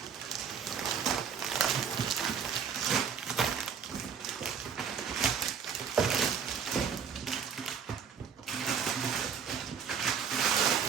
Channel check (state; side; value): quieter; left; 7.0 dB